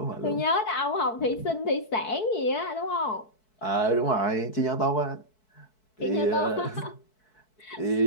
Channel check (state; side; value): late; right; 4.6 ms